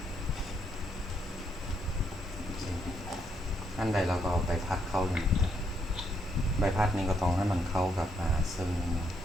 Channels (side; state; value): both; normal; correlation 0.76